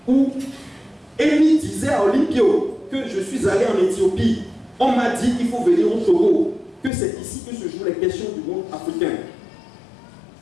Où Émile disait à Olympio que je suis allé en Éthiopie. On m'a dit qu'il faut venir au Togo, que c'est ici que se jouent les questions du monde africain.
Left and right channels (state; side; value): drops out; right; at 6.9 s